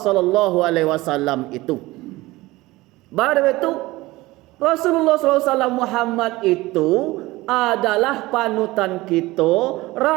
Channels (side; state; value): left; quieter; 19.5 dB